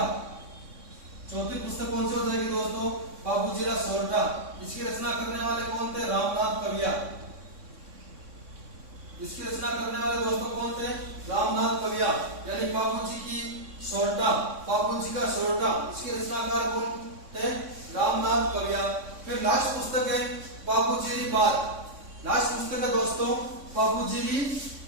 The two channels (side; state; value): left; late; 3.6 ms